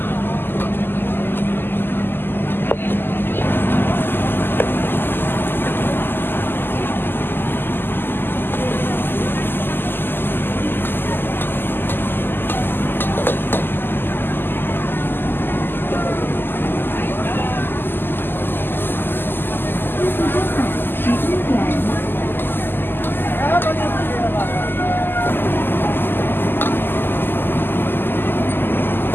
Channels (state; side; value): late; right; 0.098 ms